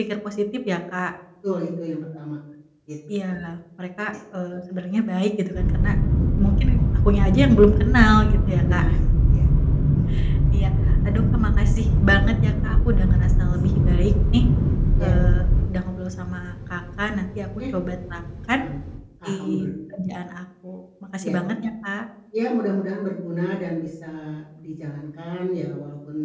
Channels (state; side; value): identical; both; correlation 1.00